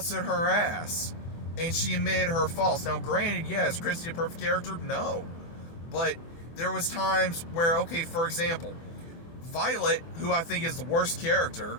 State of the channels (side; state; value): right; late; 24 ms